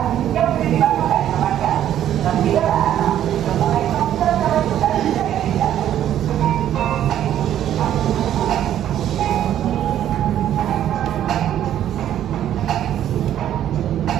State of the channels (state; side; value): quieter; left; 11.1 dB